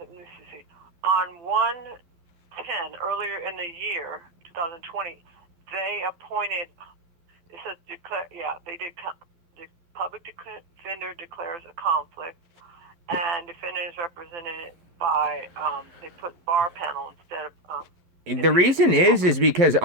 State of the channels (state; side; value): late; left; 11 ms